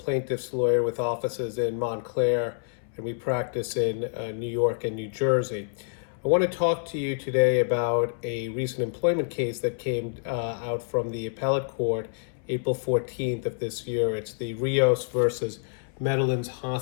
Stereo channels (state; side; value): silent; right; 60 dB below the other